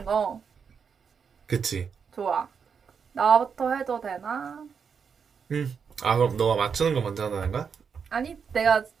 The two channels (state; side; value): quieter; left; 6.4 dB